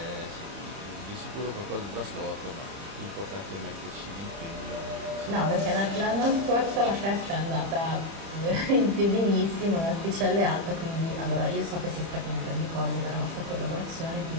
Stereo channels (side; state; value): left; late; 30 ms